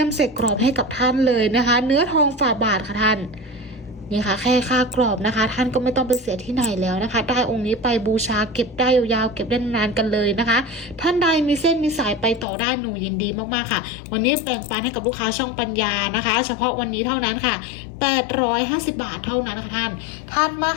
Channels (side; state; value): right; drops out; at 12.5 s